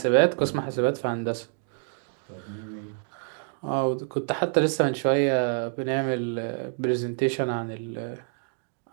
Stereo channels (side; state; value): left; silent; digital silence